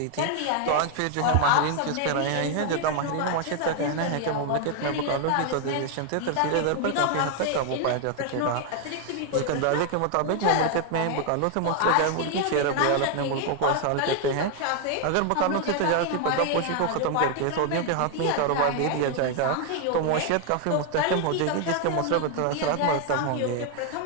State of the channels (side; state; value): both; different; correlation 0.00